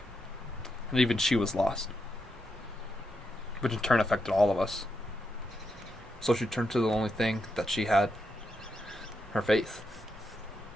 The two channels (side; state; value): both; normal; correlation 0.83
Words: and even she was lost, which in turn affected all of us. So she turned to the only thing that she had, her faith.